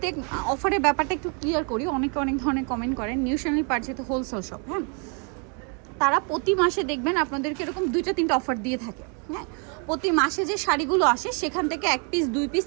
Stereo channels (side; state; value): left; quieter; 38.3 dB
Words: অফারের ব্যাপারটা একটু ক্লিয়ার করি। অনেকে অনেক ধরনের কমেন্ট করেন। নিউ শার্লি পার যেহেতু হোলসেল শপ, হ্যাঁ, তারা প্রতি মাসে দেখবেন আপনাদেরকে এরকম 2-3টা অফার দিয়ে থাকে। হ্যাঁ, প্রতি মাসে যে শাড়িগুলো আসে সেখান থেকে 1 পিস 2 পিস,